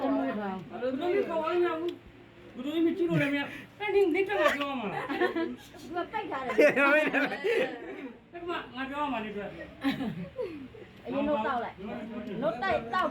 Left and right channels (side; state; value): both; identical; correlation 1.00